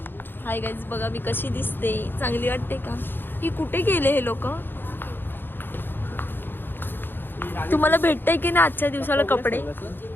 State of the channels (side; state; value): right; late; 0.098 ms